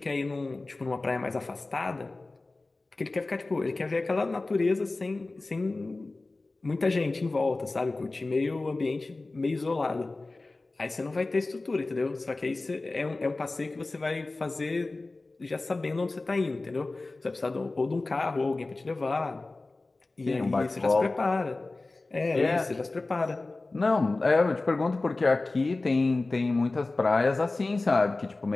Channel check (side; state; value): right; quieter; 3.2 dB